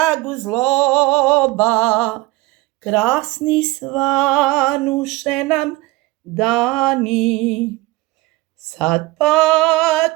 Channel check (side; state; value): left; quieter; 19.7 dB